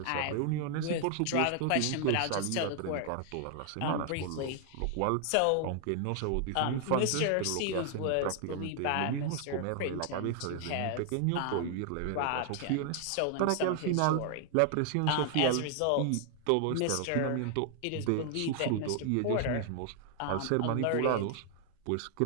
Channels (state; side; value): different; both; correlation 0.00